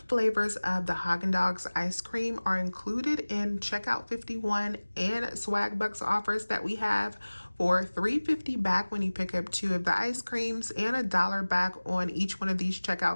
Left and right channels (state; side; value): inverted; both; correlation -1.00